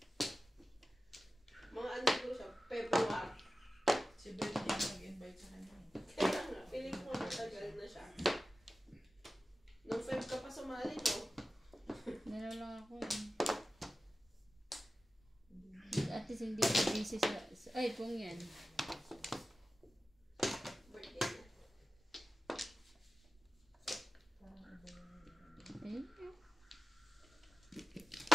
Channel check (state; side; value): normal; both; correlation 0.94